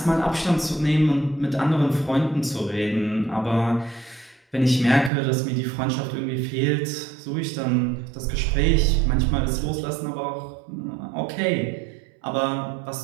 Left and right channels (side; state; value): left; drops out; at 5.1 s